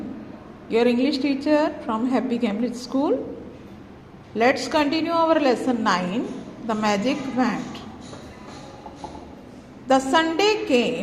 your English teacher from Happy Cambridge School. Let's continue our lesson 9, the magic wand. The Sunday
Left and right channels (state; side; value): identical; both; correlation 1.00